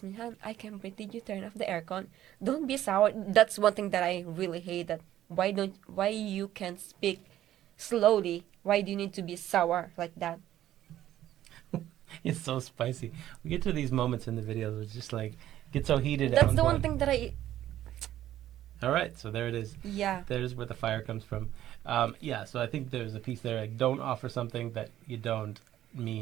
me, Han, I can breathe, did you turn off the aircon? Don't be sour. That's one thing that I really hate. That why you can't speak slowly? Why do you need to be sour like that? It's so spicy. We get to these moments in the videos where it's just like, get so heated. That's I'm the one going, thing that I all right, so there it is. yeah There's where the fire comes from. Yeah, so I think there's a piece there, like, don't offer something that you don't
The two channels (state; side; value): quieter; left; 12.7 dB